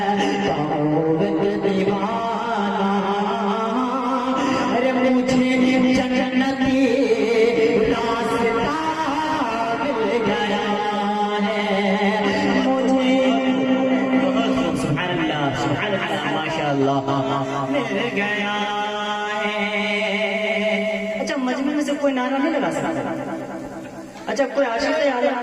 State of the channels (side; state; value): both; identical; correlation 1.00